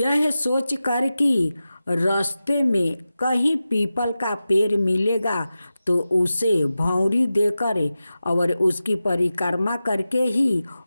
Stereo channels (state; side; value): inverted; both; correlation -0.94